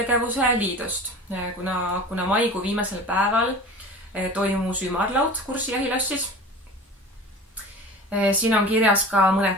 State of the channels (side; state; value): both; normal; correlation 0.38